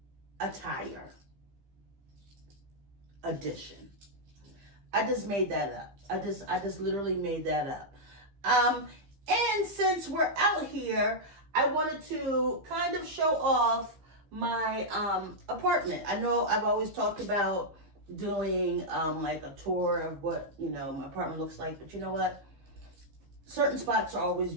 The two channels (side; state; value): left; late; 15 ms